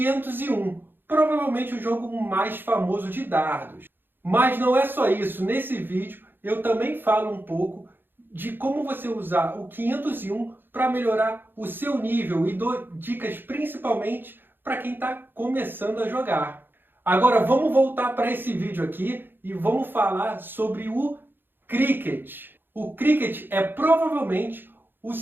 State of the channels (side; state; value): left; late; 0.098 ms